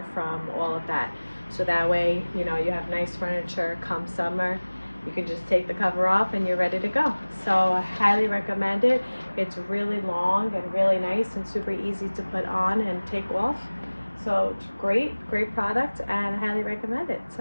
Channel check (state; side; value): inverted; both; correlation -1.00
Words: from all of that, so that way you have nice furniture come summer. You can just take the cover off and you're ready to go. So I highly recommend it. It's really long and really nice and super easy to put on and take off. So it's great product, and I highly recommend it.